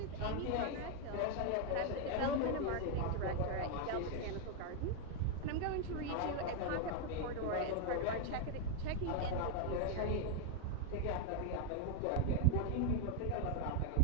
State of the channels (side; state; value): both; different; correlation 0.01